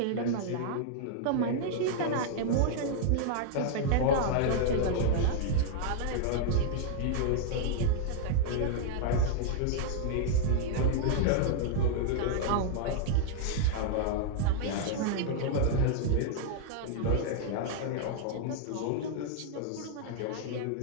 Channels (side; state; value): both; different; correlation -0.01